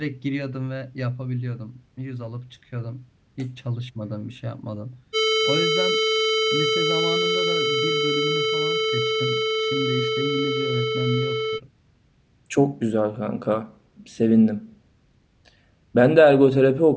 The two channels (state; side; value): identical; both; correlation 1.00